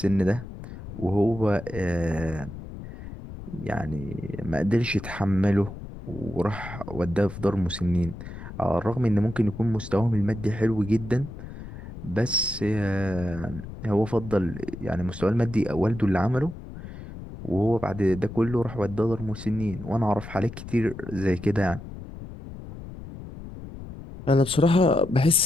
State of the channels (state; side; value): noise; left; rumble, 12 dB below the sound